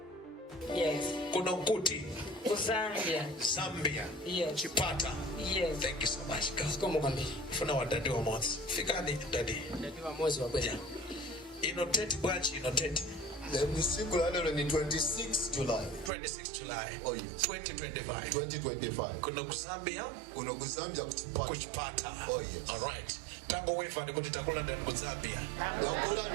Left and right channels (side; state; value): left; drops out; at 16.1 s